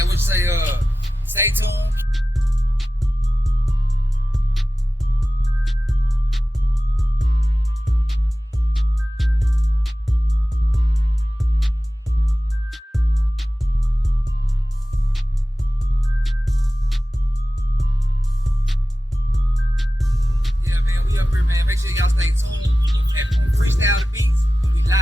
what you say? Stay tuned. Make sure y'all stay tuned and freestyle the beats. We live,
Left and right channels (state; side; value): normal; both; correlation 0.95